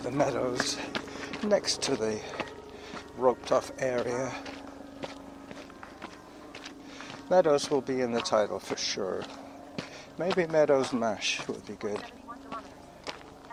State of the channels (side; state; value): both; identical; correlation 1.00